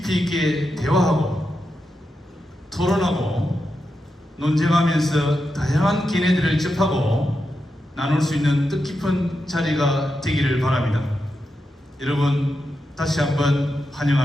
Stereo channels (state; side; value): normal; both; correlation 0.87